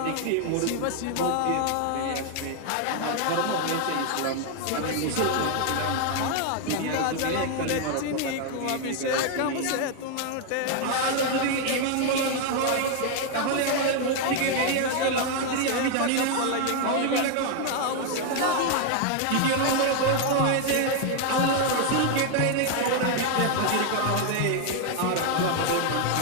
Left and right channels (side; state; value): both; different; correlation 0.00